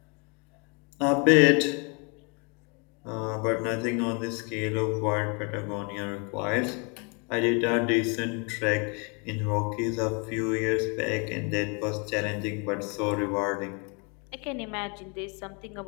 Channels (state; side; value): quieter; right; 34.0 dB